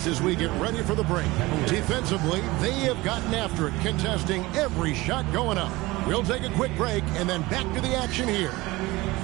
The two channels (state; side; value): quieter; left; 20.6 dB